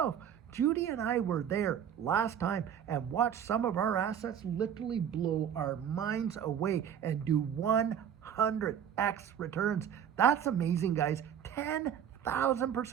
Judy and I were there last time and watched some of our assets literally blow our minds away and do 100x returns. That's amazing, guys.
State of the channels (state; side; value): quieter; left; 8.9 dB